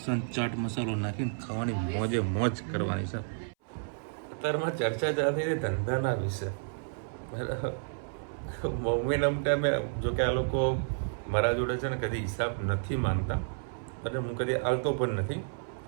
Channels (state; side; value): silent; left; 57 dB below the other